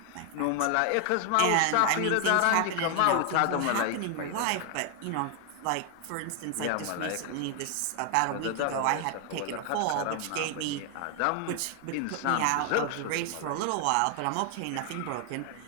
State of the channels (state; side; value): different; both; correlation 0.00